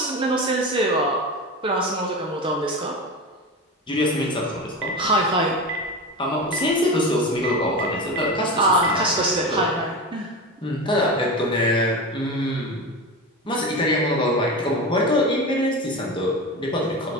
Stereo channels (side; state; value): both; normal; correlation 0.24